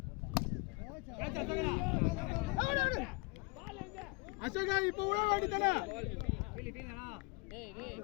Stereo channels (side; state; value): right; quieter; 27.0 dB